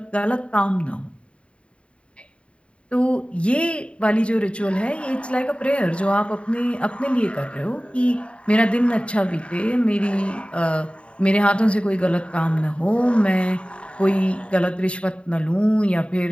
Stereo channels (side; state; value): right; late; 0.059 ms